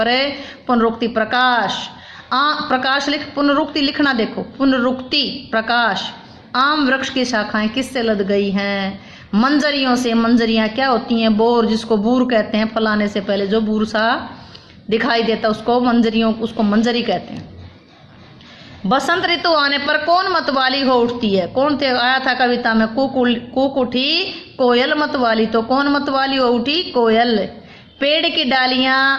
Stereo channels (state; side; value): identical; both; correlation 1.00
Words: है पुनरुक्ति। प्रकाश। प्रकाश लिख, पुनरुक्ति लिखना। देखो, पुनरुक्ति प्रकाश। आम वृक्ष की शाखाएं किससे लद गई हैं? मंजरियों से। मंजरियां क्या होती हैं? बोर, जिसको बूर कहते हैं। फलाने से पहले जो बूर सा दिखाई देता उसको मंजरी कहते हैं। बसंत ऋतु आने पर कौन मतवाली हो उठती है? कौन थे? आया था कविता में। कूक उठी कोयल मतवाली। तो कौन मतवाली हो उठी? कोयल। पेड़ की डालियां